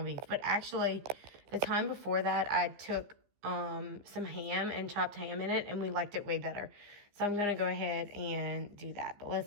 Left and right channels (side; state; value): left; late; 15 ms